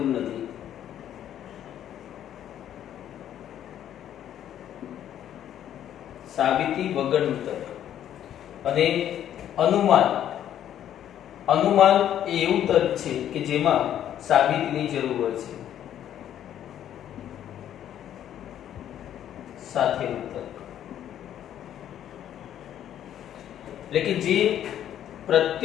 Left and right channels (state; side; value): quieter; right; 10.7 dB